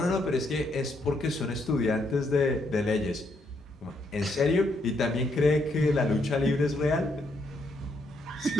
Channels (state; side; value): normal; both; correlation 0.75